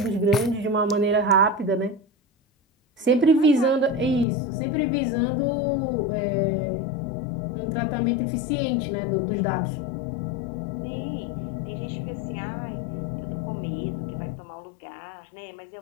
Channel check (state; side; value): drops out; right; at 4.2 s